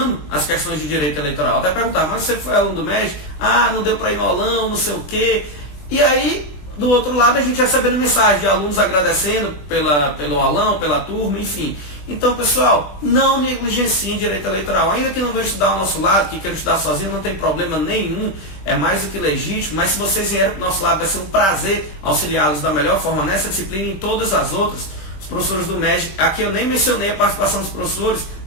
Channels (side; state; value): right; late; 21 ms